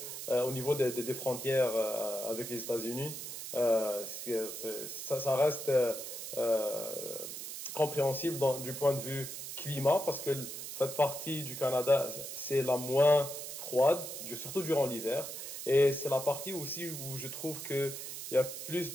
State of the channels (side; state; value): right; noise; hiss, 8 dB below the sound